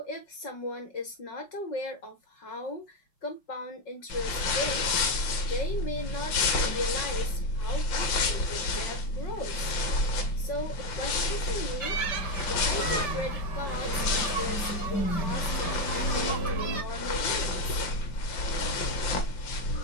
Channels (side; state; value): right; late; 5.8 ms